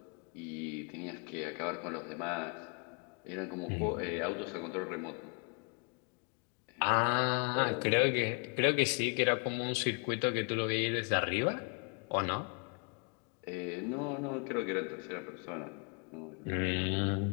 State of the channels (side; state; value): right; quieter; 37.7 dB